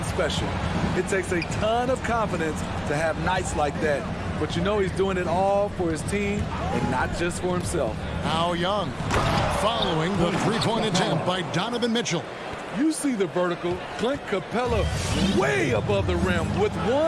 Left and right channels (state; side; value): identical; both; correlation 1.00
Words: special. It takes a ton of confidence to have nights like that. But you know he's doing it all for his team and not just for himself. Now Young following the three-point attempt by Donovan Mitchell. You see the vertical. Clint Capella way above the rim with